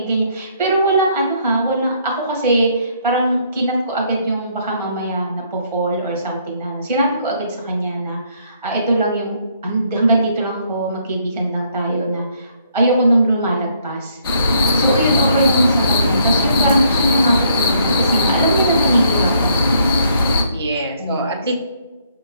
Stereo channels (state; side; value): inverted; both; correlation -0.68